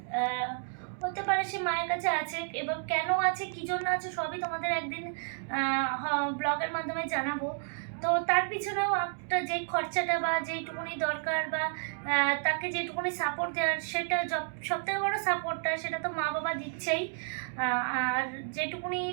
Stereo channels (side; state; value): left; silent; 57 dB below the other